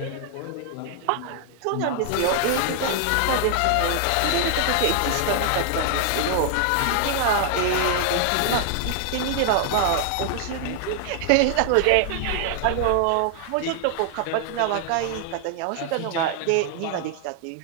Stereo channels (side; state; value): both; different; correlation 0.00